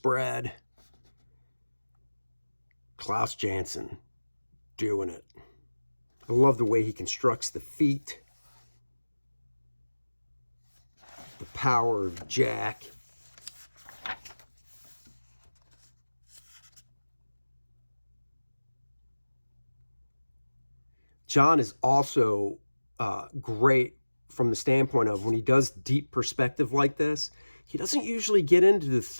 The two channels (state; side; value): inverted; both; correlation -1.00